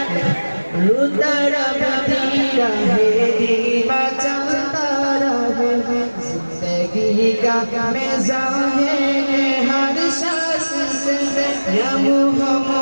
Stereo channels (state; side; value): inverted; both; correlation -1.00